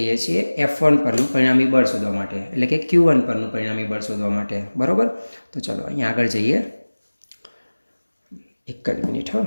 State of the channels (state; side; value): inverted; both; correlation -1.00